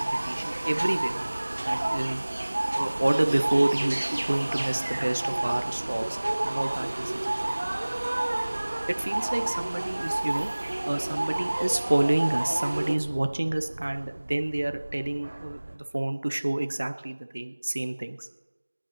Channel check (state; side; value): inverted; both; correlation -1.00